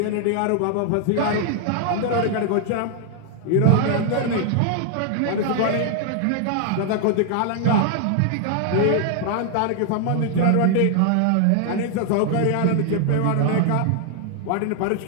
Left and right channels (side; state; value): both; different; correlation 0.00